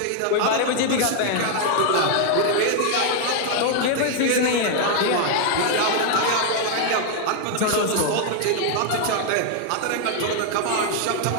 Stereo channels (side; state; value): both; different; correlation 0.00